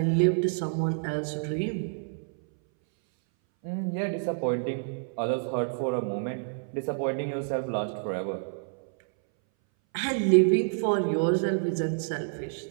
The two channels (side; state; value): left; silent; 59 dB below the other